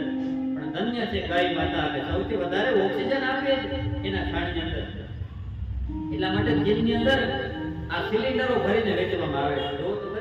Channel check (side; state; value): both; identical; correlation 1.00